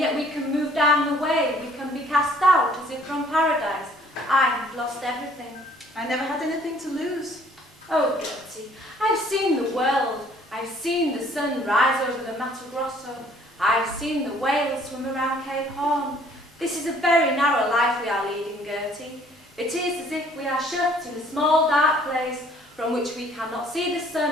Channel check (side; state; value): both; normal; correlation 0.58